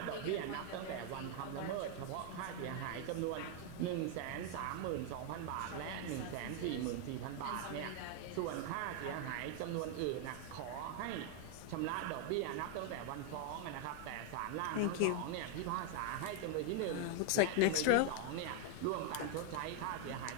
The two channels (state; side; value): different; both; correlation 0.00